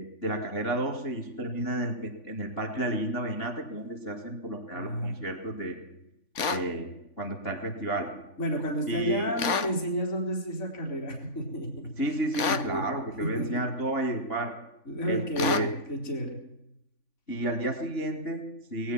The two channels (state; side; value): late; right; 3.5 ms